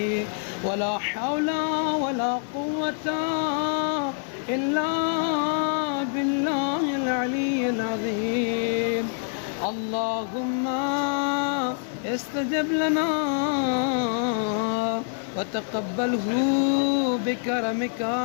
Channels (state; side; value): silent; right; digital silence